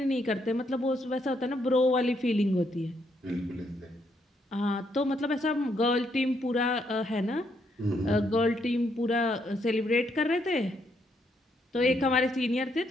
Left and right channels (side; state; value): both; normal; correlation 0.75